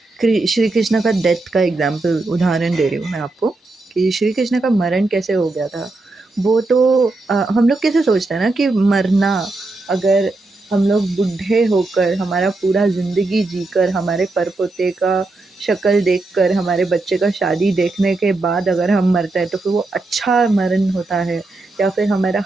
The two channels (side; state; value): left; quieter; 3.2 dB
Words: Shri Krishna का डेथ का एग्जाम्पल उदाहरण दे रही हूँ मैं आपको कि श्री कृष्ण का मरण कैसे हो गया था। वो तो हम लोग कैसे सोचते हैं ना कि मरना, अगर हम लोग बूढ़े होकर हमारा पूरा ज़िंदगी जीकर हमारे पर पोते का शक्ल देखकर हमारे बच्चे का शादी देखने के बाद अगर हम मरते हैं तो फिर वो अच्छा मरण होता है, या फिर हमारा